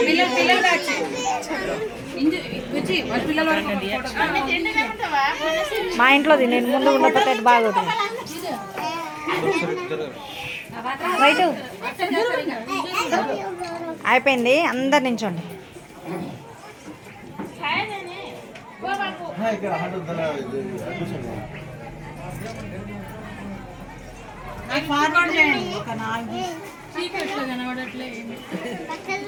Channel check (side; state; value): both; identical; correlation 1.00